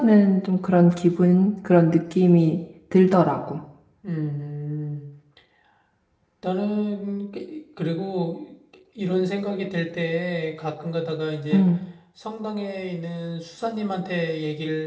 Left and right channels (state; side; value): identical; both; correlation 1.00